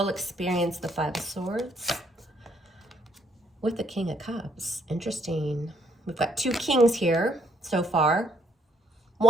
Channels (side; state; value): both; normal; correlation 0.69